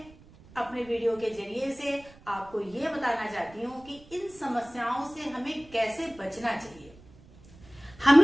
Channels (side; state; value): right; noise; rumble, 24 dB below the sound